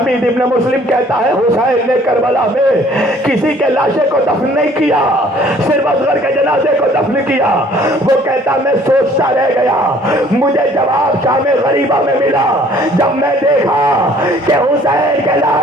ابن مسلم کہتا ہے حسین نے کربلا میں کسی کے لاشے کو دفن نہیں کیا، صرف اصغر کے جنازے کو دفن کیا۔ وہ کہتا میں سوچتا رہ گیا، مجھے جواب شام غریبہ میں ملا جب میں دیکھا کہ حسین کے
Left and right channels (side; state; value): both; normal; correlation 0.56